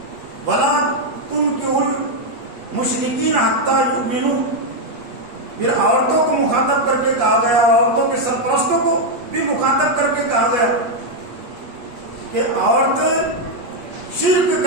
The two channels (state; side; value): late; left; 8.4 ms